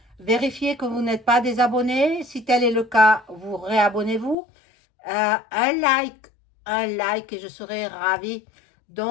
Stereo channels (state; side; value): drops out; right; at 4.4 s